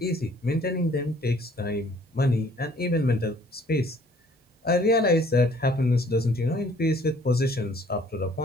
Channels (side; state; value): both; normal; correlation 0.58